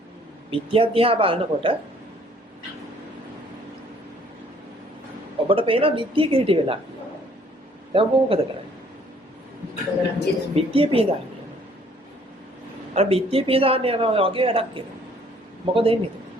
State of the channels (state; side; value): normal; both; correlation 0.60